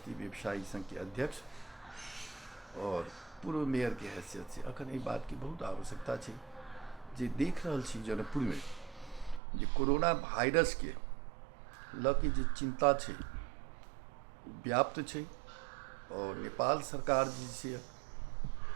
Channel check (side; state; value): left; drops out; at 9.4 s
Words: व्यवसायी संघ के अध्यक्ष और पूर्व मेयर के हैसियत से अखन एहि बात की बहुत आवश्यकता छै जे देख रहल छी जनकपुर में जे कोरोना वायरस के लऽ के जे चिंता छै व्याप्त छै और नेपाल सरकार जे